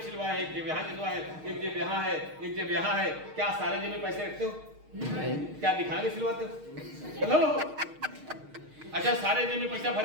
सिलवा है, एक जेब यहाँ सिलवा है, एक जेब यहाँ है, एक जेब यहाँ है, क्या सारे जेब में पैसे रखते हो? क्या दिखाने सिलवाते हो? हेलो, अच्छा सारे जेब में पैसा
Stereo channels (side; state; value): left; late; 6.5 ms